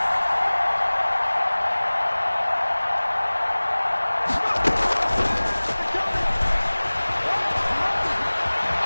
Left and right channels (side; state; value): both; inverted; correlation -1.00